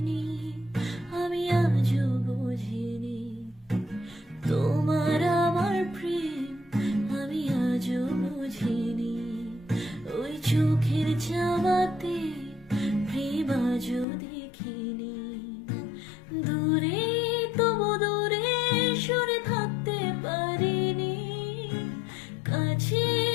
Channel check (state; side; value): drops out; right; at 14.1 s